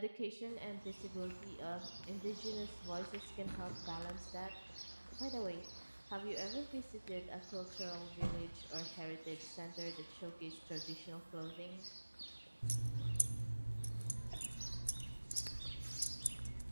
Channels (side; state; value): both; inverted; correlation -1.00